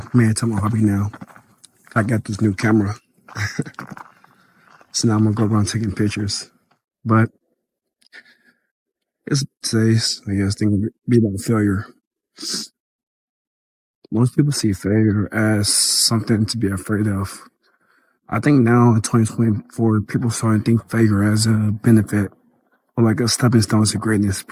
made it to my hobby now. I got this new camera. So now I'm going to go around taking pictures. But it's today's, I guess, thing be about failure. Most people see failure as something to be afraid of. I think now in 2024, people starting to think failure as a benefit or like a stepping stone to greatness,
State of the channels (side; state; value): both; identical; correlation 1.00